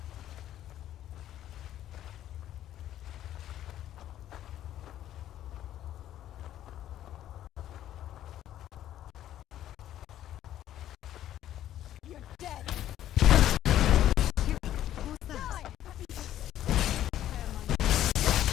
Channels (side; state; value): right; quieter; 12.1 dB